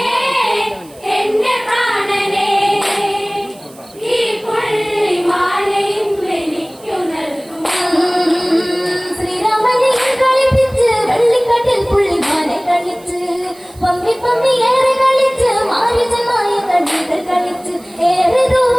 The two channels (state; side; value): noise; right; hiss, 25 dB below the sound